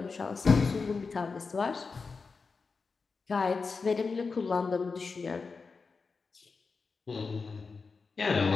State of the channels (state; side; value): quieter; right; 4.7 dB